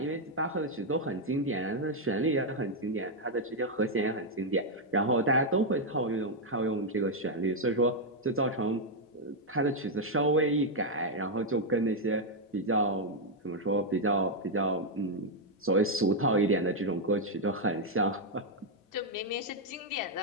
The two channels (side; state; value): both; normal; correlation -0.01